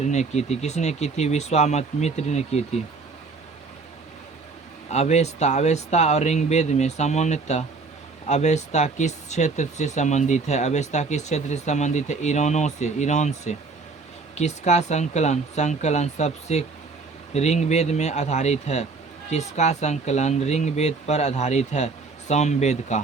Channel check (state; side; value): quieter; left; 4.2 dB